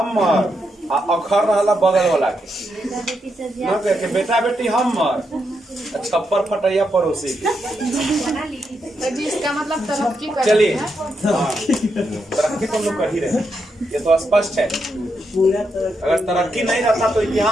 अखर रहला बगल वाला के, न कह के बेटा बेटी हमर, छप्पर फटैया पड़ोसी के। इसका मतलब तरक्की कर। चलिए, तरक्की तो हम लोग कर ही रहे, ये तो स्पष्ट है। अगर तरक्की नहीं रहता तो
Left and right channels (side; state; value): both; normal; correlation 0.82